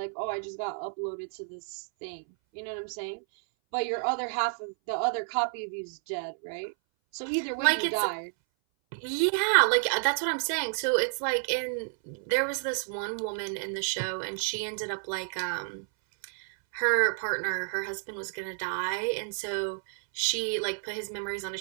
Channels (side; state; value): left; silent; 58 dB below the other